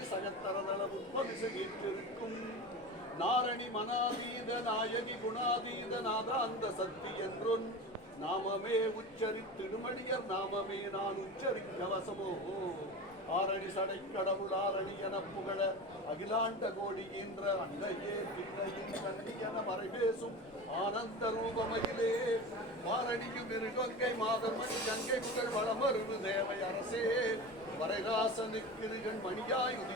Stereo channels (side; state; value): both; normal; correlation 0.29